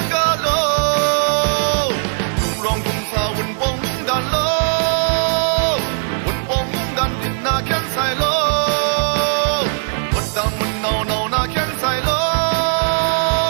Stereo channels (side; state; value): left; silent; 67 dB below the other